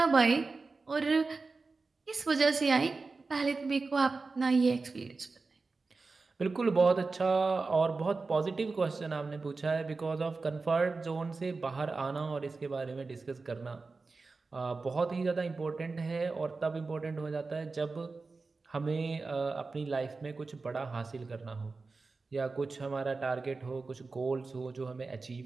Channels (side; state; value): left; quieter; 4.0 dB